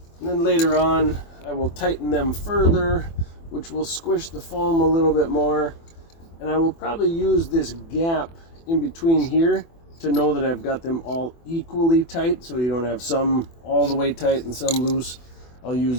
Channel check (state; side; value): late; right; 24 ms